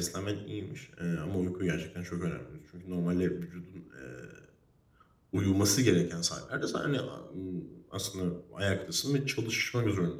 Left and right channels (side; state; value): both; identical; correlation 1.00